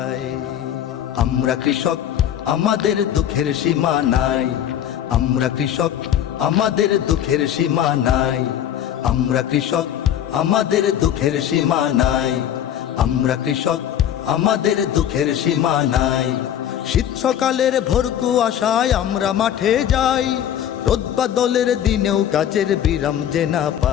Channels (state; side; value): quieter; right; 10.4 dB